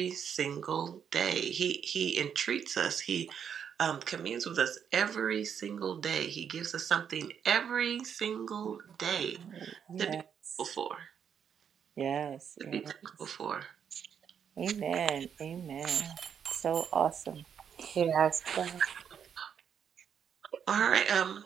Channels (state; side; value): quieter; left; 7.9 dB